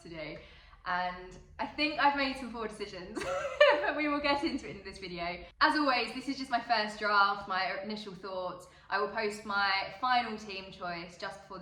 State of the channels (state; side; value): identical; both; correlation 1.00